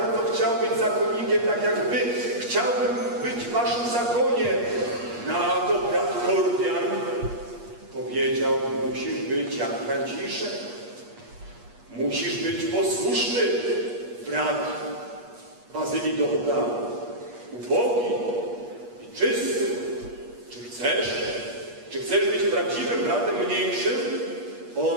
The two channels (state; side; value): late; left; 8.4 ms